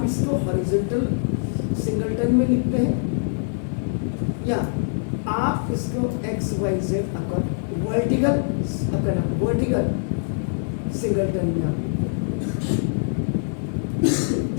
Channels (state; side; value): silent; right; digital silence